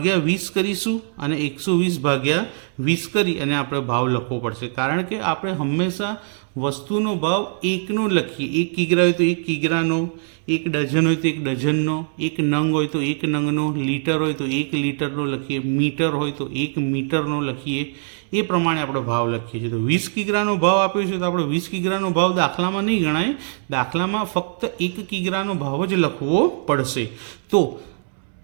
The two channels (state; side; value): silent; left; 63 dB below the other